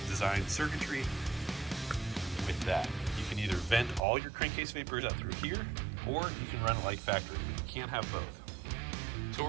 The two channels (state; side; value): drops out; left; at 4.0 s